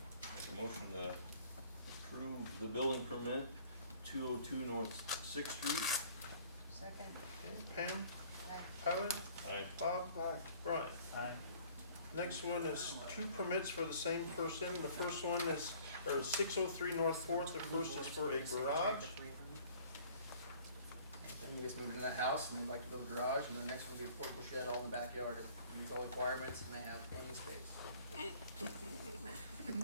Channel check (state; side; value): inverted; both; correlation -0.53